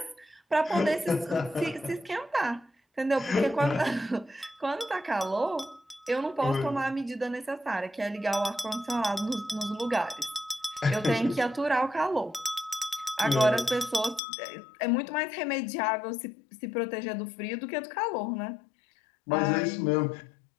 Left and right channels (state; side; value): drops out; right; at 14.2 s